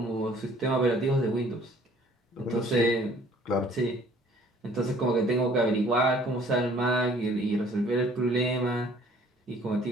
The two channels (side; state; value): both; normal; correlation 0.56